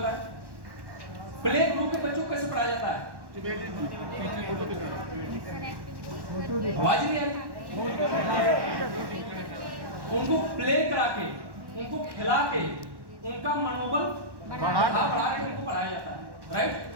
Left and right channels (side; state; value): left; late; 1.1 ms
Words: प्ले ग्रुप के बच्चों को कैसे पढ़ाया जाता है? आवाज नहीं आ रही? उनको प्ले करा के, उनको खिला के, उनका मनोबल बढ़ा के उनको पढ़ाया जाता है।